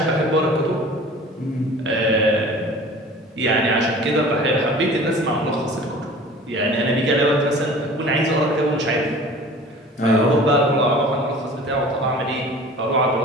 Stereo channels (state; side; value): normal; both; correlation 0.43